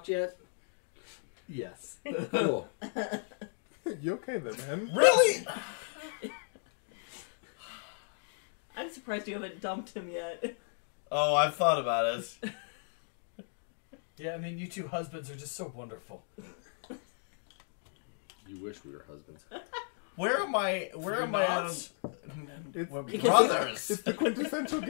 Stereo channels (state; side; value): silent; right; digital silence